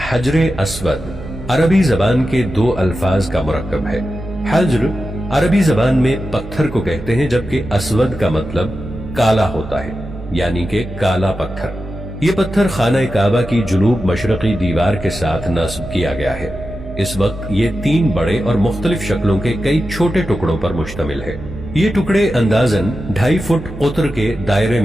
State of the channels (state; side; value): noise; right; hum, 12 dB below the sound